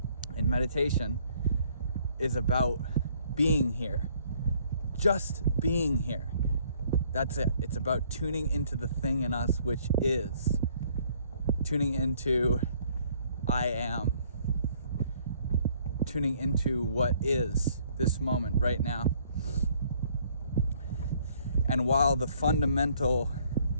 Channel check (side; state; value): both; inverted; correlation -0.63